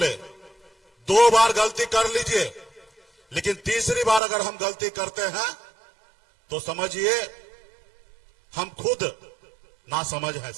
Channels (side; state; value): left; drops out; at 4.2 s